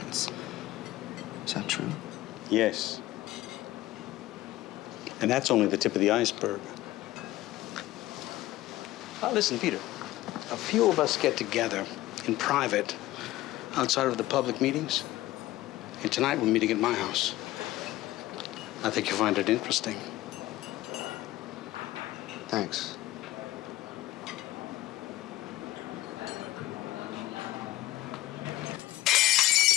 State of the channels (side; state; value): right; quieter; 16.4 dB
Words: Is that true? Yes. And that's only the tip of the iceberg. Now listen, Peter. A few of us get together in private outside of the public meetings. And tonight we're meeting at my house. I think you'll find it interesting. Thanks.